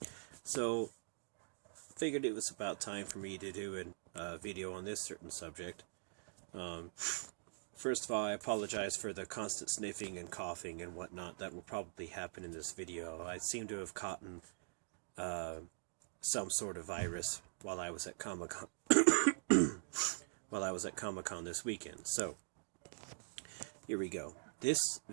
so figured it was about time for me to do a video on this certain subject. First of all, I apologize for the constant sniffing and coughing and whatnot that will probably happen in this video. I seem to have caught some sort of virus while I was at Comic-Con this weekend. So, here we go. This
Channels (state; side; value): silent; left; digital silence